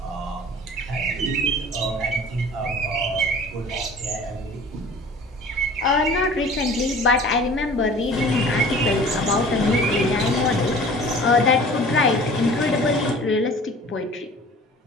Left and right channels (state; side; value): normal; both; correlation 0.45